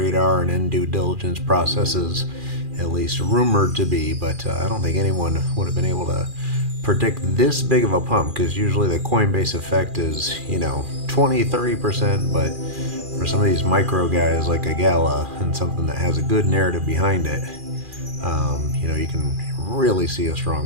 and in due diligence processes, at least rumored to be. But I don't think anyone would have been able to predict this big of a pump, because usually the Coinbase effect is, 20-30%, but for some of these micro guys like a GALA and something that has a good narrative behind it, you can really see a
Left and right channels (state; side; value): late; left; 2.4 ms